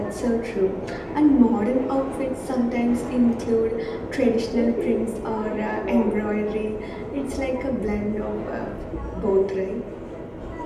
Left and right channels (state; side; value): identical; both; correlation 1.00